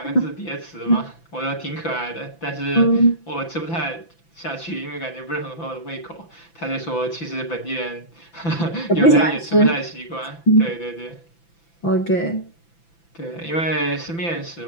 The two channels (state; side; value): late; right; 5.9 ms